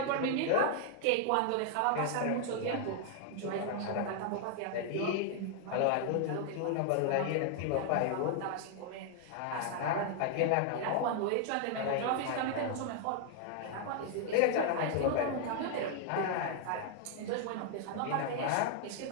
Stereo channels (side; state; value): both; different; correlation 0.00